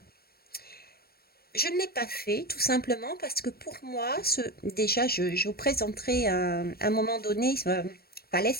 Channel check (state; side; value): late; right; 0.45 ms